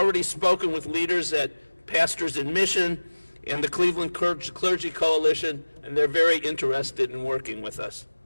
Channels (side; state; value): both; inverted; correlation -1.00